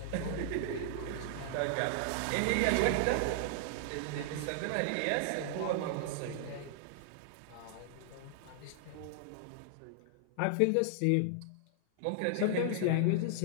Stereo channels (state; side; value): different; both; correlation -0.01